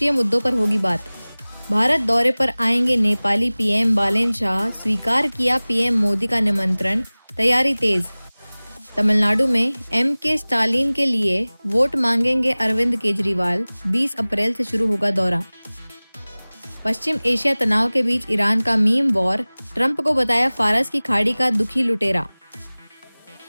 मुद्दों पर होगी बात। भारत दौरे पर आएंगे नेपाली पीएम बालेन शाह। स्वीकार किया पीएम मोदी का निमंत्रण। तैयारी तेज। तमिलनाडु में के स्टालिन के लिए वोट मांगेंगे अरविंद केजरीवाल। 20 अप्रैल से शुरू होगा दौरा। पश्चिम एशिया तनाव के बीच ईरान का मीम वॉर। ट्रंप को बताया फारस की खाड़ी का दुखी लुटेरा।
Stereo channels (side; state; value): both; inverted; correlation -1.00